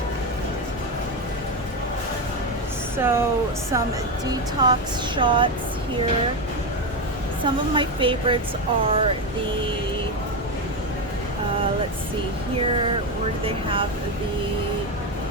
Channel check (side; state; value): both; normal; correlation 0.12